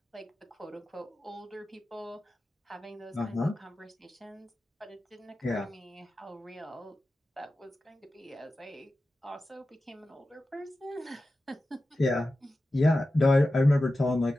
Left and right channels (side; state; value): both; normal; correlation 0.93